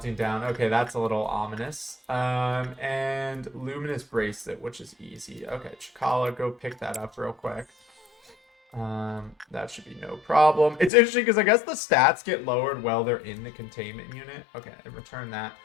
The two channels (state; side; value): drops out; right; at 10.9 s